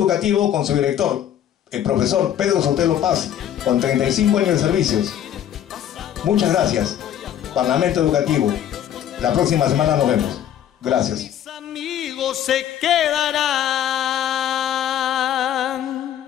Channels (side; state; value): right; quieter; 10.5 dB